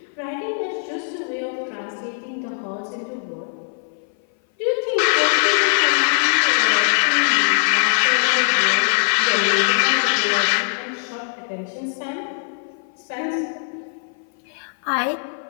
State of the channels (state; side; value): silent; right; 59 dB below the other